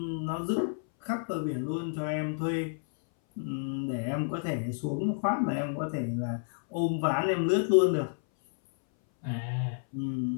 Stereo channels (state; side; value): silent; right; 58 dB below the other